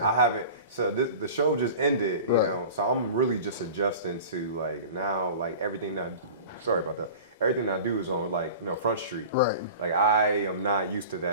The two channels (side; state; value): both; inverted; correlation -0.38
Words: I haven't. So the show just ended, you Right. know. So I'm really just adjusting to like now, like everything that. Sorry about that. Everything I do is on like Front Street. Right. Like I am not used to